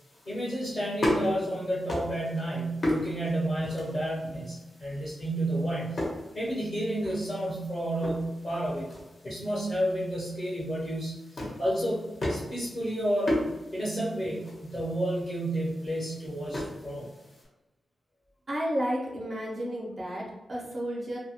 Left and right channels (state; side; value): normal; both; correlation 0.88